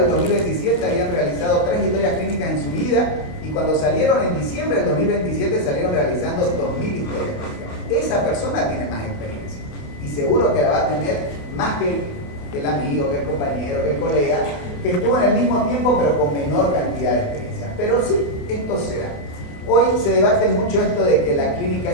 2027 habían realizado 3 historias clínicas en su vida y cuando salieron en diciembre del 2027 salieron realizando 2000 historias clínicas. Esa persona tiene más experiencia y seguro que la va a tener más que el amigo, que el compañero, que el colega, que estuvo en el mismo tiempo pero con menor cantidad de experiencia. Pero sí, esto se da. Hoy se debate mucho esto de que la clínica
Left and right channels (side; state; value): right; late; 28 ms